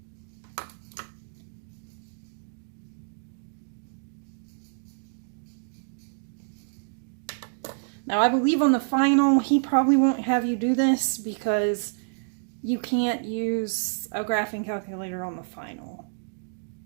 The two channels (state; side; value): silent; left; digital silence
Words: Now, I believe on the final, he probably won't have you do this because you can't use a graphing calculator on the final.